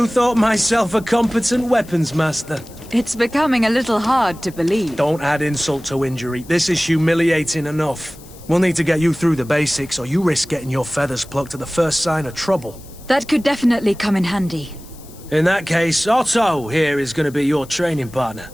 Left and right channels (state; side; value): noise; left; hiss, 22 dB below the sound